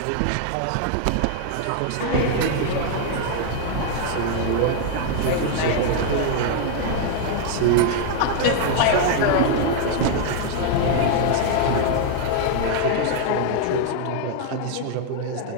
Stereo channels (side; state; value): both; different; correlation 0.00